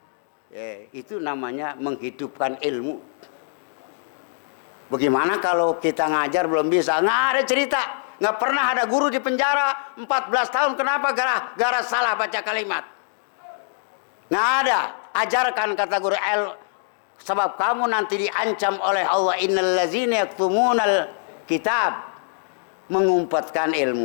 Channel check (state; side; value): silent; right; 63 dB below the other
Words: Itu namanya menghidupkan ilmu. Bagaimana kalau kita ngajar belum bisa? Nggak ada cerita. Nggak pernah ada guru di penjara 14 tahun. Kenapa? Gara salah baca kalimat. Nggak ada. Ajarkan kata guru sebab kamu nanti diancam oleh Allah. Innal ladzina yaktumunal kitab. Mengumpatkan